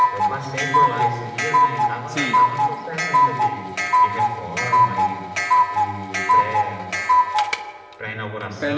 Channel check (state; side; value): identical; both; correlation 1.00